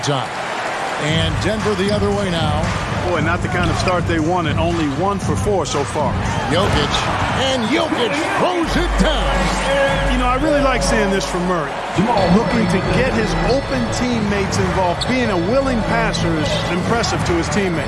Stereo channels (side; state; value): both; identical; correlation 1.00